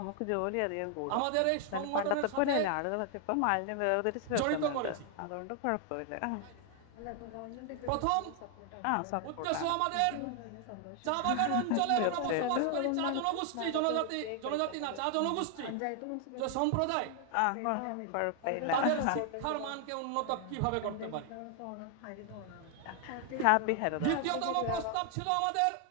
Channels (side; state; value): both; different; correlation 0.00